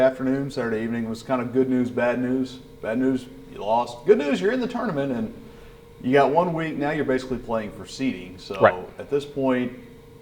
Saturday evening was kind of good news, bad news. Bad news, you lost. Good news, you're in the tournament, and you got 1 week. Now you're basically playing for seeding. So right. At this point,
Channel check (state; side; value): identical; both; correlation 1.00